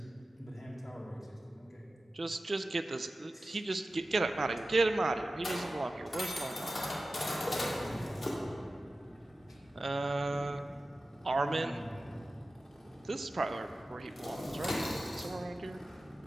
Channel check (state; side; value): normal; both; correlation 0.95